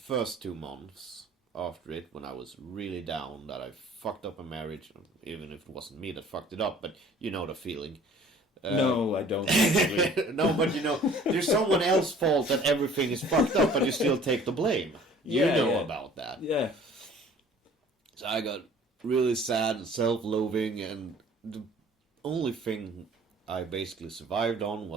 2 months after it, when I was really down, that I fucked up a marriage, even if it wasn't me that fucked it up, but you know the feeling. No, I don't. No, but there's someone else's fault that everything is fucked up, but you still take the blame. You Yeah, know yeah. about that. Yeah. So I got really sad and self-loathing, and the only thing I basically survived on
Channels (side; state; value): both; normal; correlation 0.51